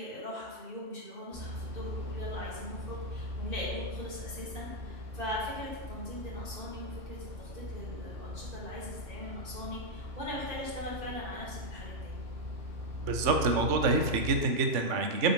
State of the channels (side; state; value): left; late; 3.5 ms